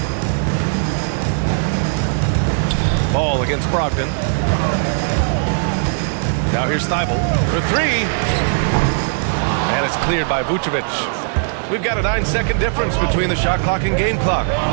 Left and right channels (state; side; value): silent; left; 67 dB below the other